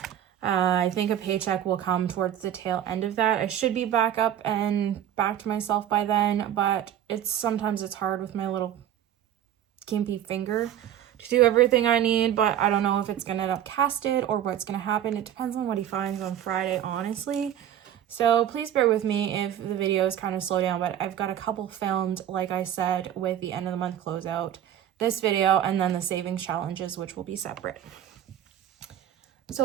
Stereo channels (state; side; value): quieter; left; 10.8 dB